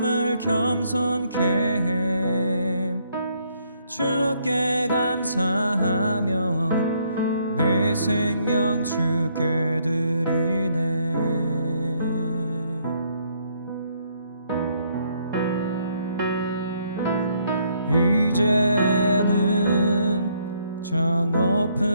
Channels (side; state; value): both; inverted; correlation -0.70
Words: 겸손케 해. 주께 감사하며 내 생명 주께 드리네. 이제는 저